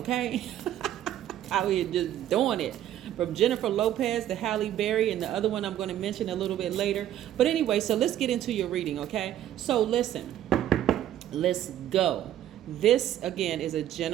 Out here just doing it. From Jennifer Lopez to Halle Berry, and the other one I'm going to mention a little bit later. But anyway, so let's get into your reading, okay? So listen, let's go. This, again, is a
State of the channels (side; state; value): left; quieter; 11.8 dB